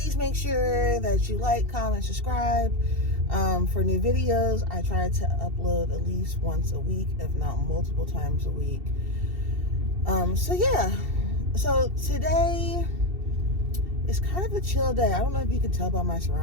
make sure that you like, comment, subscribe. For new videos, I try to upload at least once a week, if not multiple times a week. So today is kind of a chill day. I don't know if you can tell by my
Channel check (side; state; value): left; late; 2.7 ms